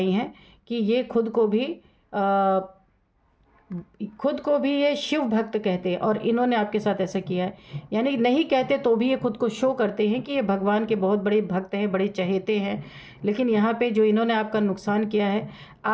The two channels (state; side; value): identical; both; correlation 1.00